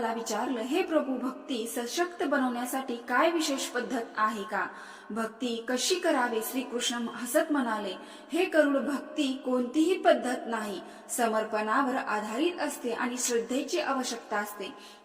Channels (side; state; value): both; identical; correlation 1.00